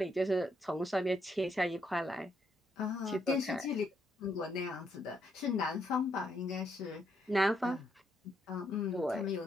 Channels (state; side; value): normal; both; correlation 0.76